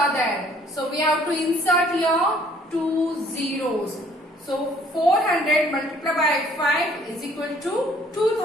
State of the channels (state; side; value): normal; both; correlation 0.59